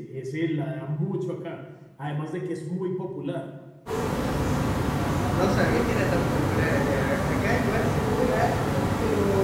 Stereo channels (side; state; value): both; identical; correlation 1.00